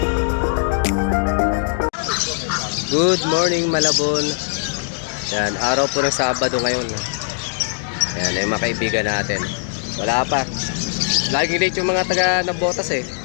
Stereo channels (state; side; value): silent; right; digital silence